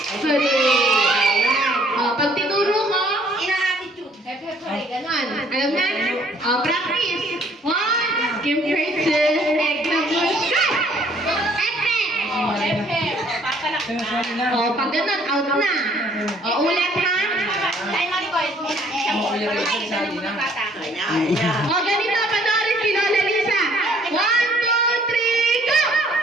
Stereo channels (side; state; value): both; normal; correlation 0.61